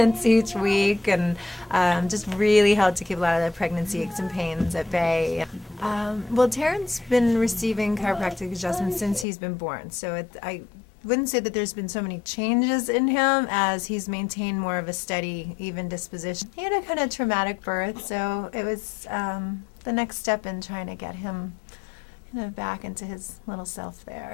each week, and just really helped to keep a lot of the pregnancy aches and pains at bay. Well, Taryn's been receiving chiropractic adjustments since he's been born, so I wouldn't say that there's been so many changes in him as he's maintained more of a steady, even disposition. He had a kind of traumatic birth, so it was the next step in trying to get him back into his little self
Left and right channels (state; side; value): drops out; right; at 9.2 s